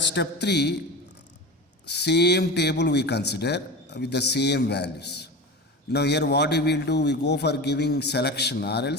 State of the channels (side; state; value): both; normal; correlation 0.28